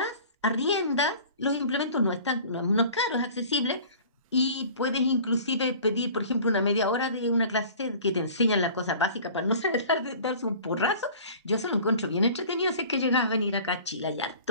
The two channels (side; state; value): both; inverted; correlation -0.45